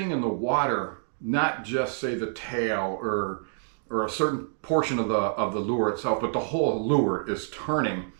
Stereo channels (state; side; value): silent; left; digital silence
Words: in the water, not just say the tail or a certain portion of the lure itself, but the whole lure is turning.